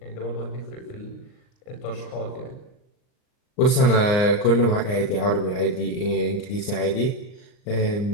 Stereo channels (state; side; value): late; right; 39 ms